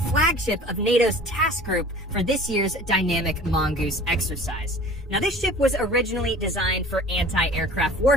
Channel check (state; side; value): normal; both; correlation 0.44